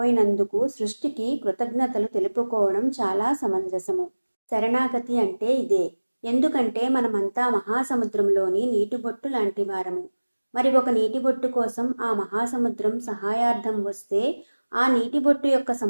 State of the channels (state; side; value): inverted; both; correlation -1.00